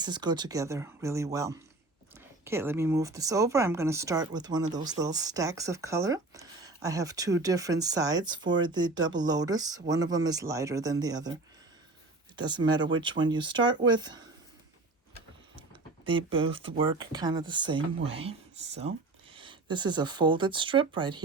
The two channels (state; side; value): quieter; left; 3.1 dB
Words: go together really well. Okay, let me move this over. I'm going to start with one of those little stacks of color. I have two different sides for the double lotus. One of them is lighter than the other. It doesn't matter which one you start with. They both work kind of the same way. So this is a folded strip right